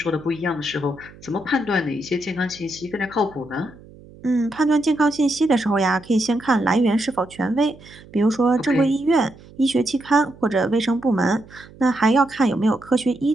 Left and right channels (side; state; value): right; noise; hum, 22 dB below the sound